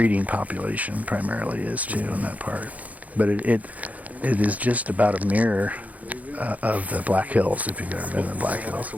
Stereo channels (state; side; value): late; left; 0.074 ms